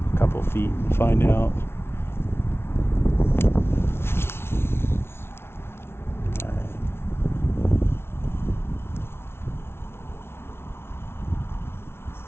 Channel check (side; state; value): right; late; 0.12 ms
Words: a couple feet and find out. Alright.